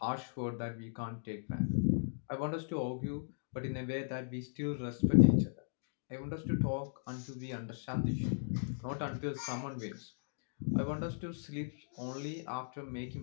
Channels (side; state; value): right; silent; digital silence